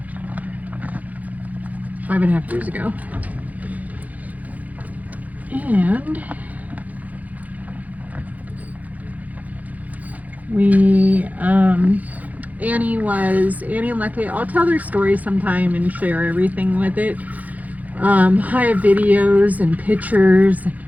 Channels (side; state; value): left; late; 0.078 ms